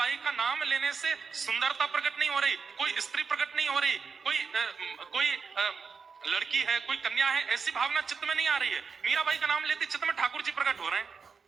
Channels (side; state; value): left; quieter; 5.4 dB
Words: का नाम लेने से सुंदरता प्रकट नहीं हो रही, कोई स्त्री प्रकट नहीं हो रही, कोई लड़की है, कोई कन्या है, ऐसी भावना चित्त में नहीं आ रही है। मीराबाई का नाम लेते चित्त में ठाकुर जी प्रकट हो रहे हैं।